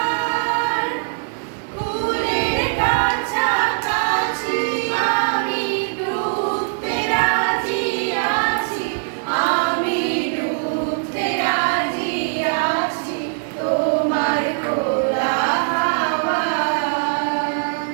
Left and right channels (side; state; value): left; silent; digital silence